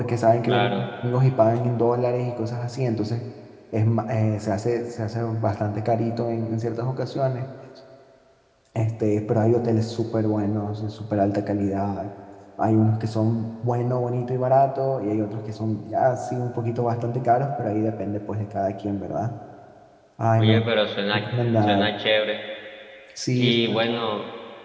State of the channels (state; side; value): identical; both; correlation 1.00